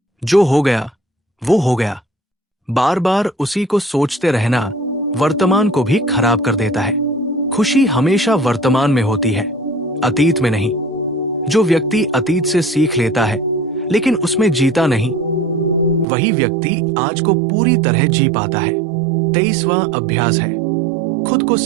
जो हो गया वो हो गया। बार बार उसी को सोचते रहना वर्तमान को भी खराब कर देता है। खुशी हमेशा वर्तमान में होती है, अतीत में नहीं। जो व्यक्ति अतीत से सीख लेता है लेकिन उसमें जीता नहीं, वही व्यक्ति आज को पूरी तरह जी पाता है। 23वां अभ्यास है खुद को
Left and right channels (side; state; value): left; drops out; at 16.1 s